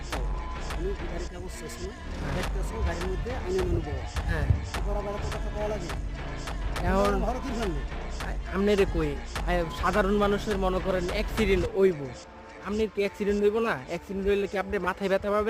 তুমি কি গাড়ি কাগজ শেষ না? দেখতেছো গাড়ির মধ্যে আইনের মানুষ বড়। হ্যাঁ, বড় বড় তো কথা কওয়া লাগে। এখন ভালো কি জানলে? আপনারে কই সাধারণ মানুষের মনে করেন অ্যাক্সিডেন্ট হইব, আপনি কি অ্যাক্সিডেন্ট হইব না? অ্যাক্সিডেন্ট হইলে কি আপনি মাথায় ব্যথা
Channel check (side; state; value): both; identical; correlation 1.00